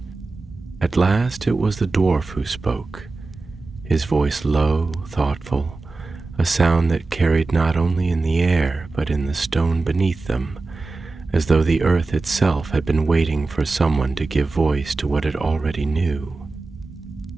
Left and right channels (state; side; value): quieter; left; 3.6 dB